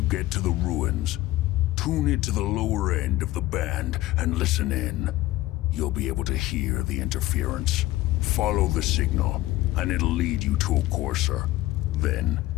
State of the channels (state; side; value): quieter; right; 17.0 dB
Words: get to the ruins, tune into the lower end of the band and listen in. You'll be able to hear the interference. Follow the signal, and it'll lead you to a courser. Then,